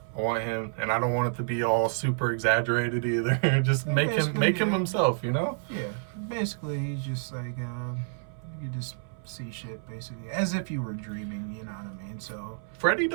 I want him, and I don't want it to be all super exaggerated either. Just make him himself, you know? Yeah, basically he's just like you just see shit basically as if you were dreaming. You know what I mean? So Freddy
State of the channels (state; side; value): silent; left; 59 dB below the other